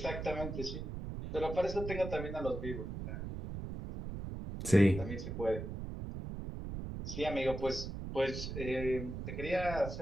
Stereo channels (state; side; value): noise; right; rumble, 6 dB below the sound